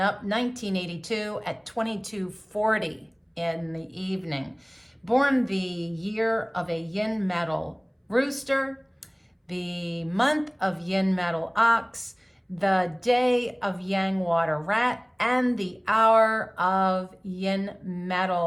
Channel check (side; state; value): both; identical; correlation 1.00